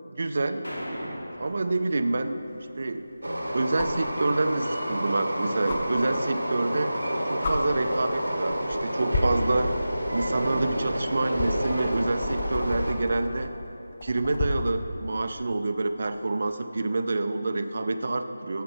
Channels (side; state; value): both; inverted; correlation -0.95